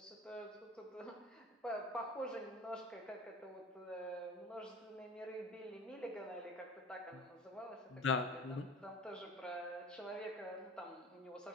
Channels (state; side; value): normal; both; correlation 0.39